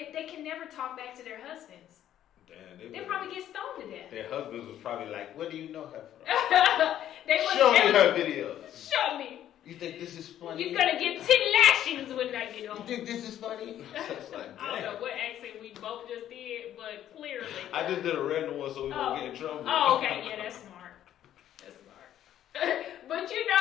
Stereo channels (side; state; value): right; quieter; 11.4 dB